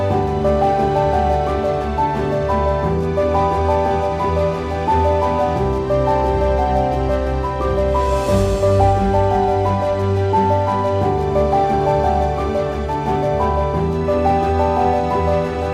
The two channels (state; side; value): identical; both; correlation 1.00